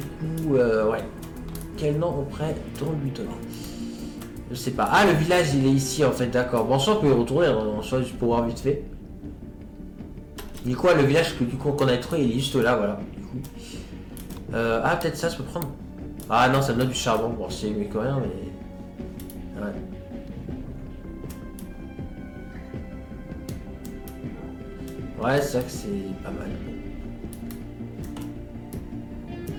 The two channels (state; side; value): identical; both; correlation 1.00